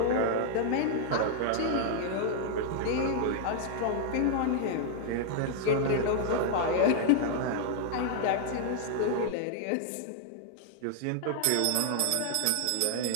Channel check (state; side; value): different; both; correlation -0.01